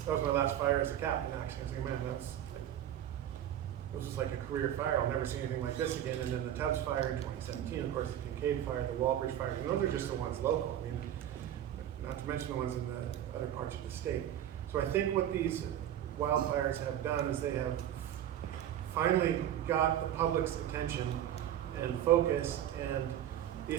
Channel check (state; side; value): quieter; left; 11.1 dB